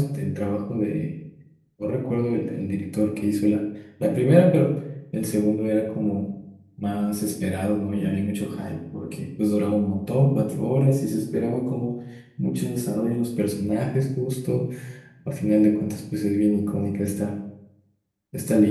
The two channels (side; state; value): both; identical; correlation 1.00